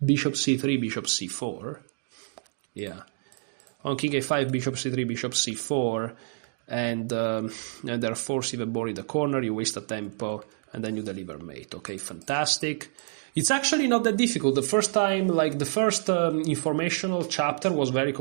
Bishop c3, bishop c4. Yeah. On king a5, bishop c3, bishop c4, and they're forced even more in the corner, you waste a tempo, and then you deliver mate. Okay, fantastic. It's actually not that difficult. The first time, like the first informational chapter was very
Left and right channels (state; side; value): silent; left; digital silence